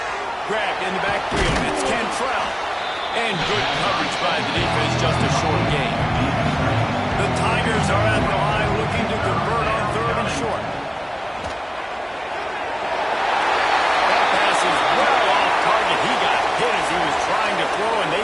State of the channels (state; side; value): identical; both; correlation 1.00